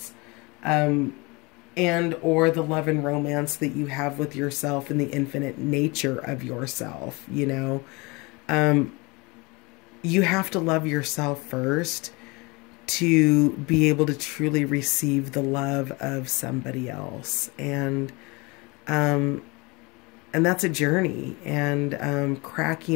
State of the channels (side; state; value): right; quieter; 26.4 dB